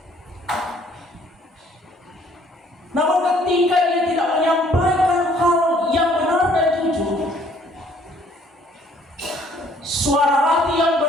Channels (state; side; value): normal; both; correlation 0.60